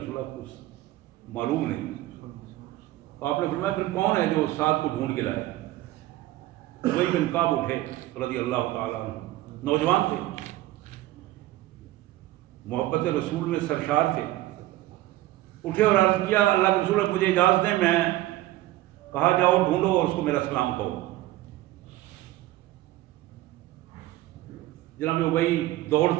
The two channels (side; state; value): left; quieter; 16.1 dB